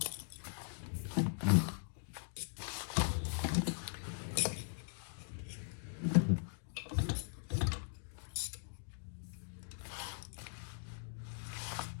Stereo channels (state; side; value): silent; right; digital silence